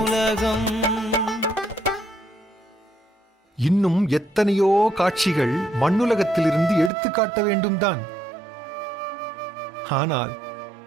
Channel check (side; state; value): left; drops out; at 6.9 s